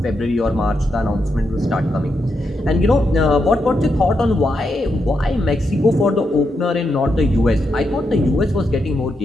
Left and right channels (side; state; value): both; normal; correlation 0.83